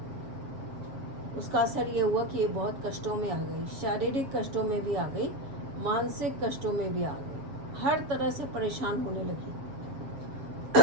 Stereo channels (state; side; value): late; left; 7.4 ms